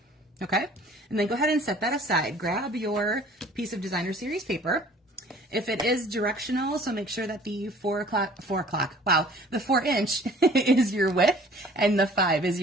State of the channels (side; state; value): both; normal; correlation 0.51